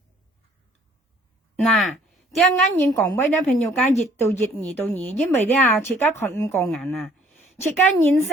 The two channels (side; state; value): both; normal; correlation 0.59